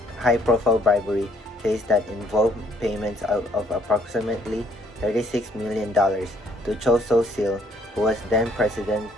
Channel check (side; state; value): both; normal; correlation 0.65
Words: bribery case that involved payments of approximately $36 million to Cho So-sil, who was then President